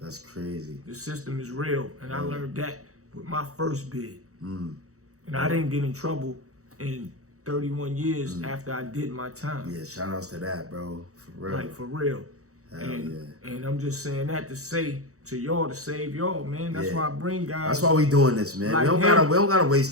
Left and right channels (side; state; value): left; late; 0.65 ms